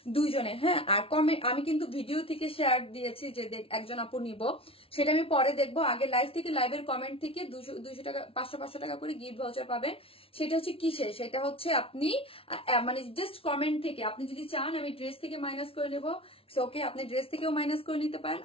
দুইজনে। হ্যাঁ, আর কমেন্ট আমি কিন্তু ভিডিও থেকে শেয়ার দিয়েছি যে একজন আপু নিব, সেটা আমি পরে দেখবো। আগে লাইভ থেকে, লাইভের কমেন্ট থেকে 200 টাকা, 500 টাকা করে গিফট ভাউচার পাবেন। সেটা হচ্ছে কিসে, সেটা হচ্ছে আপনি মানে জাস্ট কমেন্ট থেকে, আপনি যদি চান আমি ড্রেস থেকে মাইনাস করে নেবো, ওকে, আপনি ড্রেস থেকেও মাইনাস করে নিতে পারেন।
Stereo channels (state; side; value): late; right; 0.26 ms